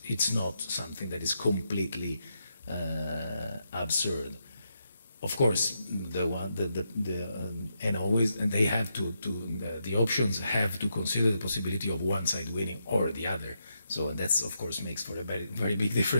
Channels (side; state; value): both; inverted; correlation -0.82